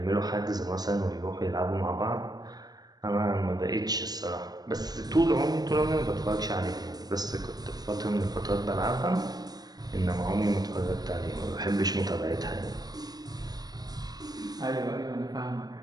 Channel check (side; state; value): left; late; 0.19 ms